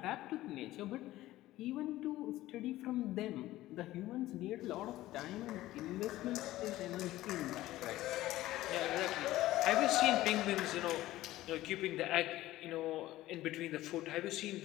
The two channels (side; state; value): right; quieter; 16.0 dB